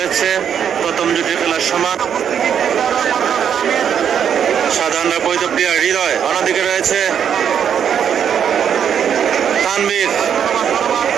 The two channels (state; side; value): quieter; left; 8.3 dB